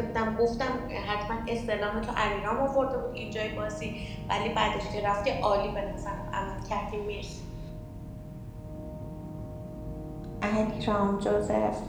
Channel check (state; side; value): identical; both; correlation 1.00